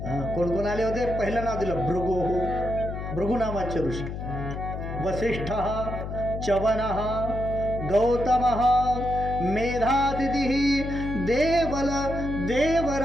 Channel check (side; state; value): left; noise; hum, 6 dB below the sound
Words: कोण कोण आले होते? पहिलं नाव दिलं भृगु, भृगु नामाचे ऋषी, वसिष्ठ, च्यवन, गौतम, मेधातिथि, देवल